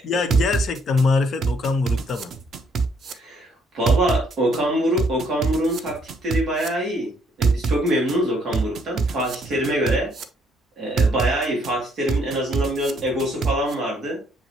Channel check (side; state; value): both; normal; correlation 0.68